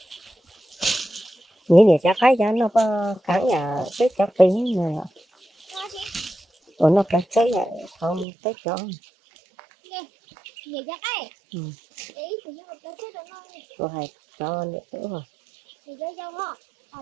nghĩ để cho cái cho nó cắn nhà cái cho tiếng này nó cắn cái này không tới cho rồi cho nữa rồi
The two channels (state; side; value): drops out; left; at 8.2 s